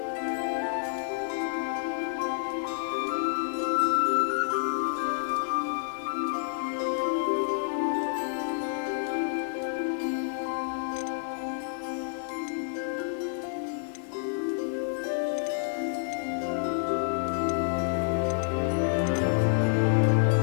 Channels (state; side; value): silent; right; 59 dB below the other